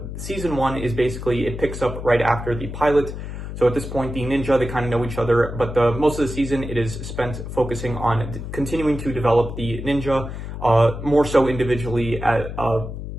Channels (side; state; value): left; noise; hum, 8 dB below the sound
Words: season 1 is basically, it picks up right after the pilot. So at this point, the ninja, they kind of know each other, but most of the season, it is spent focusing on continuing to develop the ninja, more so individually,